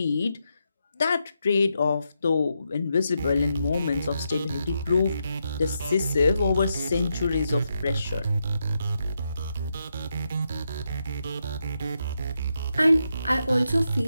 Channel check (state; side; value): inverted; both; correlation -0.83